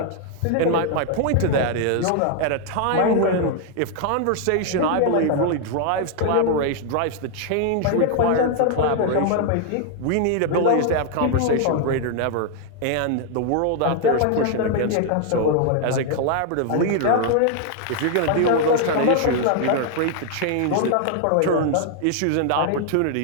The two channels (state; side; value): different; both; correlation 0.00